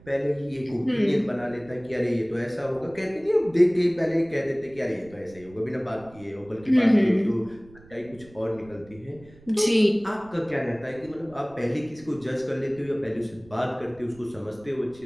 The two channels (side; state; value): right; noise; rumble, 23 dB below the sound